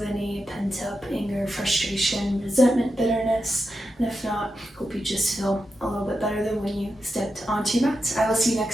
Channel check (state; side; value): normal; both; correlation 0.88